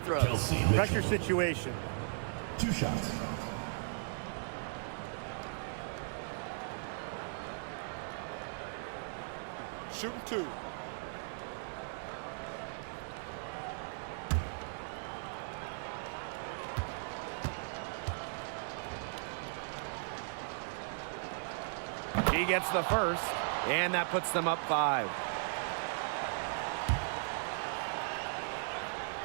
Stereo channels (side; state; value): left; silent; 53 dB below the other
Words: Pressure situation. 2 shots. Shooting 2. He gets the first, and that puts them up 5.